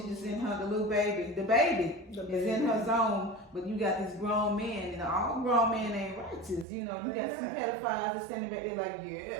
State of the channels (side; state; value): left; drops out; at 6.7 s